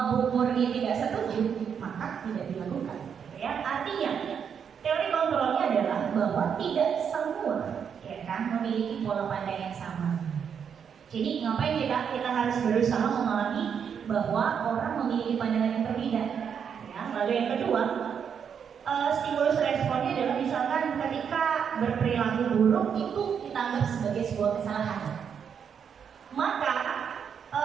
Bu Murni tidak setuju, maka tidak dilakukan. Ya, artinya teori kontrolnya adalah bahwa tidak semua memiliki pola pandang yang sama. Jadi ngapain kita harus berusaha memahami bahwa orang memiliki pandangan yang berbeda. Ya, lalu yang kedua, stimulus responnya adalah misalkan ketika berperilaku buruk itu kita anggap sebagai sebuah kesalahan. Maka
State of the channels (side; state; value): left; quieter; 7.4 dB